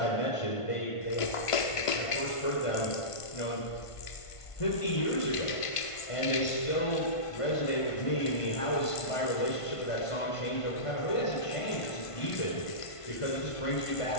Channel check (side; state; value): right; late; 1.5 ms